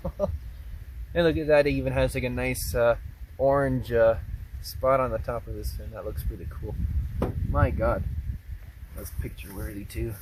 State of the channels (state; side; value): identical; both; correlation 1.00